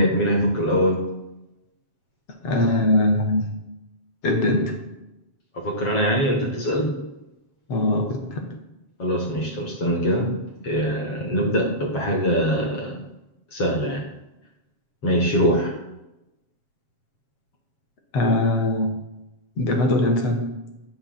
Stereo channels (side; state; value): right; late; 7.4 ms